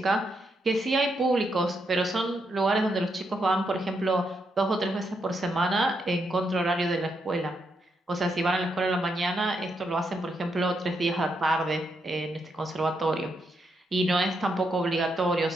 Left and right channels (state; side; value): normal; both; correlation 0.80